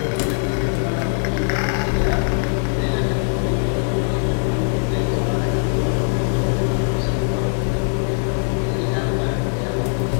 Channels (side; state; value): right; silent; digital silence